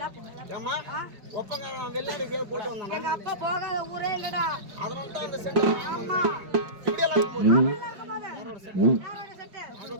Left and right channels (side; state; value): left; late; 5.1 ms